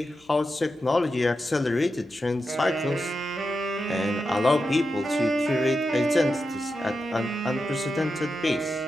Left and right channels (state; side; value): normal; both; correlation 0.89